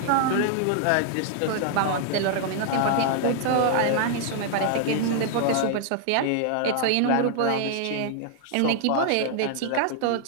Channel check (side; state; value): both; different; correlation -0.01